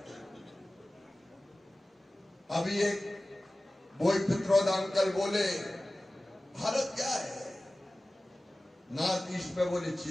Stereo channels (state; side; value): normal; both; correlation 0.97